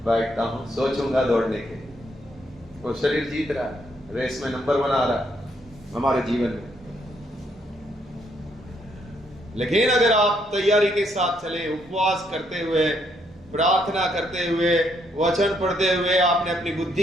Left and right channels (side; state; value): both; normal; correlation 0.73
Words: बैठता हूं, सोचूंगा दौड़ने के। वो शरीर जीत रहा है, रेस में नंबर 1 आ रहा है हमारे जीवन में। लेकिन अगर आप तैयारी के साथ चले, उपवास करते हुए, प्रार्थना करते हुए, वचन पढ़ते हुए, आपने अपनी